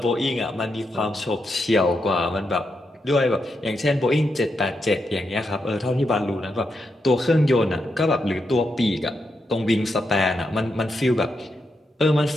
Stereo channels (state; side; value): normal; both; correlation 0.83